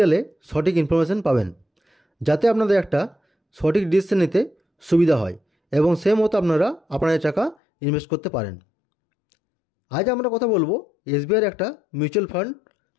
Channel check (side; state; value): right; drops out; at 7.6 s